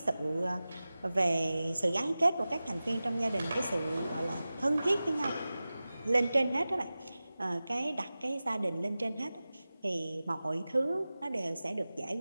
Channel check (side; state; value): both; inverted; correlation -0.96